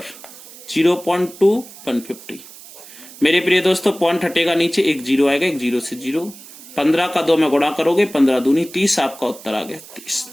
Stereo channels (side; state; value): right; noise; hiss, 18 dB below the sound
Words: 0.2 150। मेरे प्रिय दोस्तों, पॉइंट हटेगा नीचे, 1 0 आएगा, 1 0 से 0। 15 का 2 में गुणा करोगे, 15 दूनी 30, आपका उत्तर आ गया 30।